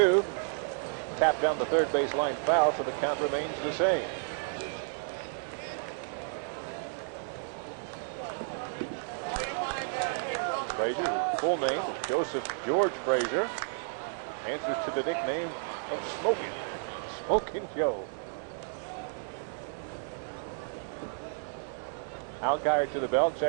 Tapped down the third baseline foul, so the count remains the same. Full name, Joseph George Frazier, answers to the nickname Smoking Joe. Alkire to the belt,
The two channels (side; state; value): left; silent; digital silence